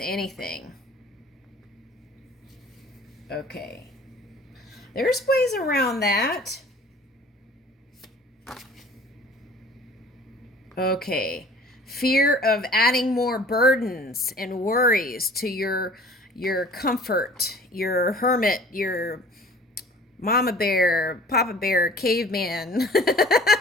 anything. Okay. There's ways around that. Okay. Fear of adding more burdens and worries to your comfort, your hermit, your mama bear, papa bear, caveman.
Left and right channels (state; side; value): normal; both; correlation 0.48